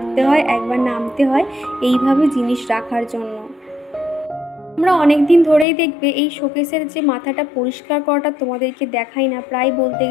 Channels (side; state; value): right; drops out; at 5.7 s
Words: হয়, একবার নামতে হয় এইভাবে জিনিস রাখার জন্য। আমরা অনেক দিন ধরেই দেখবে এই শোকেসের যে মাথাটা পরিষ্কার করাটা তোমাদেরকে দেখাই না, প্রায় বলতে